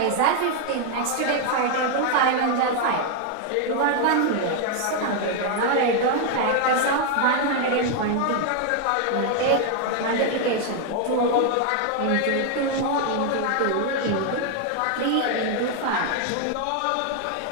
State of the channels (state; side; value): different; both; correlation 0.00